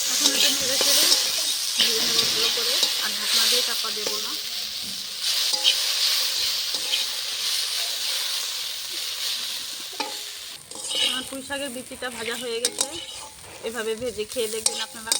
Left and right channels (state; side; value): identical; both; correlation 1.00